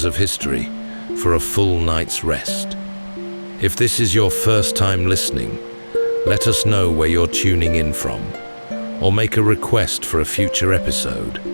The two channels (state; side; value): inverted; both; correlation -1.00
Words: of history for a full night's rest. If this is your first time listening, let us know where you're tuning in from, or make a request for a future episode.